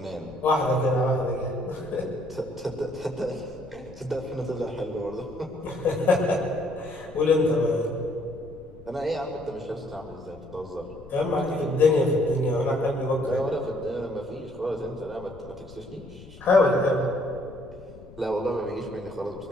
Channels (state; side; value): noise; left; rumble, 19 dB below the sound